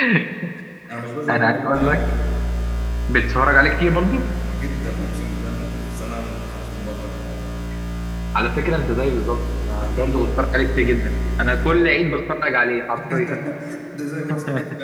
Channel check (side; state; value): both; identical; correlation 1.00